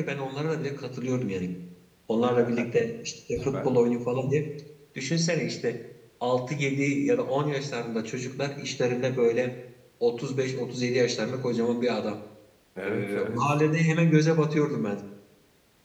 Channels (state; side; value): identical; both; correlation 1.00